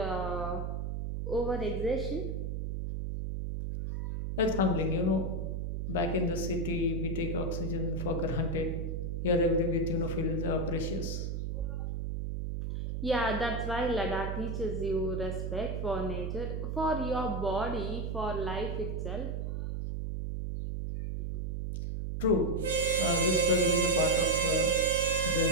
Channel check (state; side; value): noise; right; hum, 3 dB below the sound